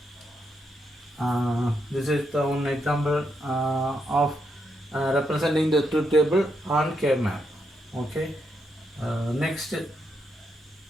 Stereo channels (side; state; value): both; normal; correlation 0.80